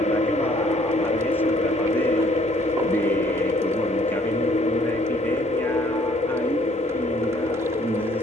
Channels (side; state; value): both; normal; correlation 0.61